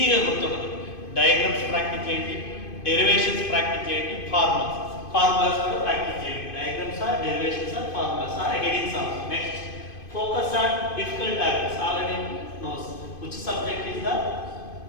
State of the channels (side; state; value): right; late; 2.5 ms